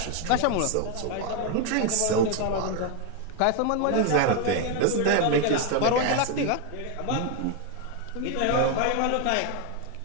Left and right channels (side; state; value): both; different; correlation 0.01